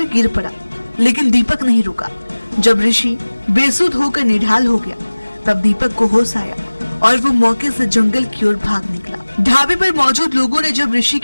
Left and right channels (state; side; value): inverted; both; correlation -1.00